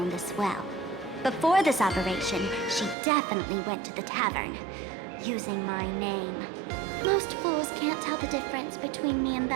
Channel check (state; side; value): drops out; left; at 3.0 s